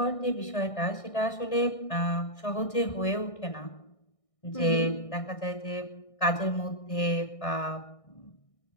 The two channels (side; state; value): right; late; 1.6 ms